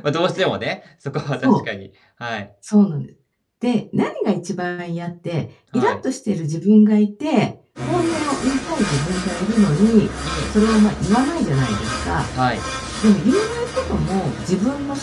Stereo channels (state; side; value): identical; both; correlation 1.00